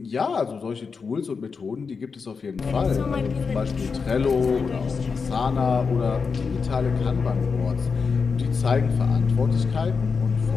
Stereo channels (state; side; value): quieter; right; 5.2 dB